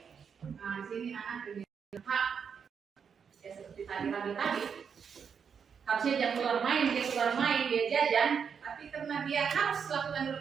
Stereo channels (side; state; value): left; quieter; 6.8 dB